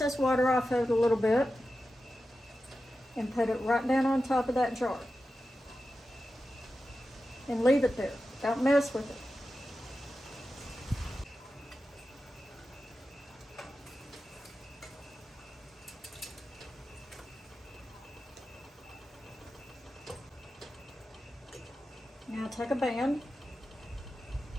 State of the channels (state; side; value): normal; both; correlation 0.92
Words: water off of it a little bit and put it right down on top of that jar. And leave it there. Don't mess with it. Now take a band.